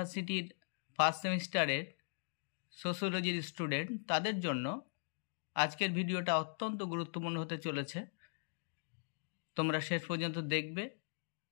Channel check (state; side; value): silent; right; digital silence